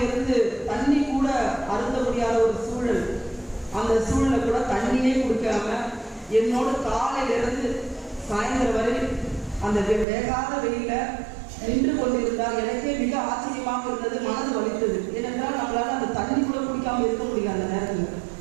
தண்ணி கூட அருந்த முடியாத ஒரு சூழல். அந்த சூழலை கூட தண்ணியே குடிக்காம என்னோட காலையிலிருந்து சாயந்தரம் வரை அந்த வேகாத வெயில நின்று கொண்டிருந்தால் எனக்கே மிக ஆச்சரியமாக இருந்தது, மனது வலித்தது. ஏனென்றால் நம்மளால அந்த தண்ணி கூட குடிக்காம இருக்க முடியாது அந்த நேரத்தில்.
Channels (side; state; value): left; drops out; at 10.1 s